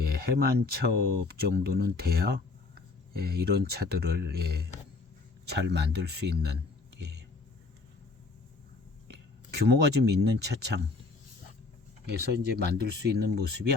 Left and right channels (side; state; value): right; quieter; 3.8 dB